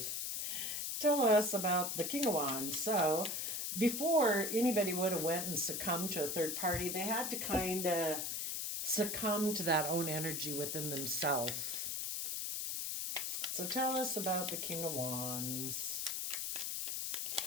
Tell us about the King of Wands. So, before anybody would have went and succumbed to a third party, they had to kind of succumb to that own energy within themselves. So tell us about the King of Wands.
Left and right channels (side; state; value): left; noise; hiss, 2 dB below the sound